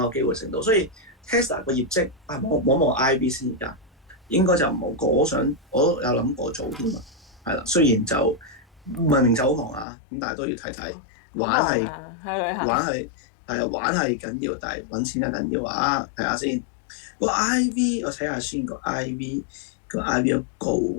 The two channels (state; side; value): drops out; right; at 9.9 s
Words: 有機會升到，所以 Tesla 個業績望 IB 先而家，應該就冇過，我有諗過做添啊，係啦，雖然就明明就好忙啊，咁但係都要睇睇，玩係緊要，但係揾錢就緊要啊！睇下先，個 IV 我睇下先，個 IV 都高